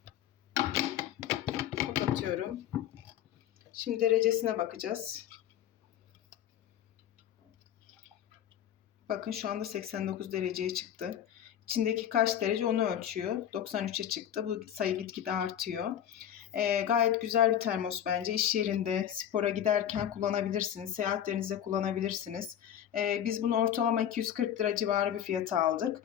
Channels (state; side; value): quieter; right; 10.3 dB